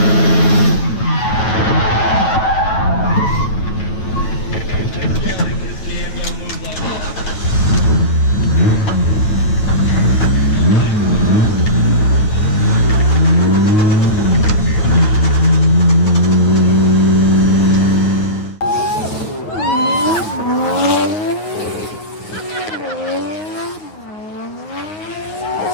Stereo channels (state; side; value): late; right; 8.9 ms